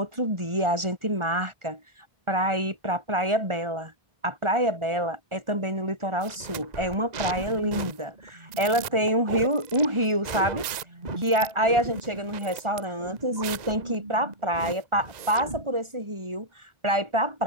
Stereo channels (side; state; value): left; late; 1.9 ms